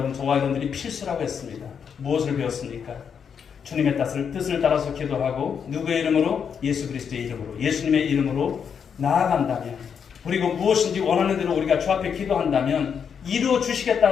저와 여러분들이 필수라고 했습니다. 무엇을 배웠습니까? 주님의 뜻을 따라서 기도하고 누구의 이름으로? 예수 그리스도의 이름으로, 예수님의 이름으로 나아간다면, 그리고 무엇인지 원하는 대로 우리가 주 앞에 기도한다면 이루어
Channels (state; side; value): quieter; right; 7.1 dB